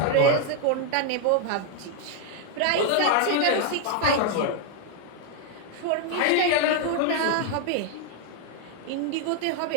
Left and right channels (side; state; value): both; different; correlation 0.00